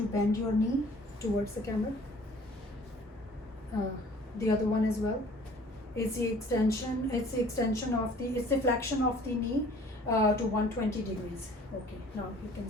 bend your knee towards the camera? The other one as well. It's the extension it's the flexion of the knee to 120 degrees. Okay, now you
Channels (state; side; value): normal; both; correlation 0.52